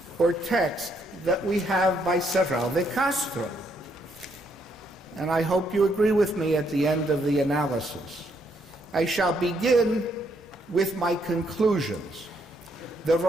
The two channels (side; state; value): both; normal; correlation 0.73